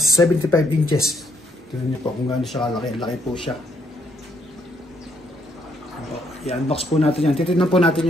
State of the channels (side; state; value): both; normal; correlation 0.71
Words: inches. Tignan niyo po kung gaano siya kalaki. Laki po siya. I-unbox po natin yan. Titignan po